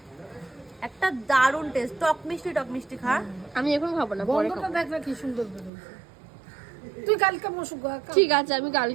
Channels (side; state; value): left; drops out; at 5.7 s